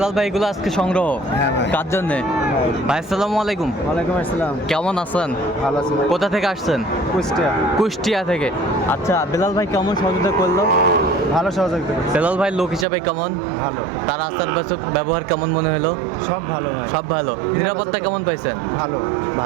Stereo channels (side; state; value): left; drops out; at 12.9 s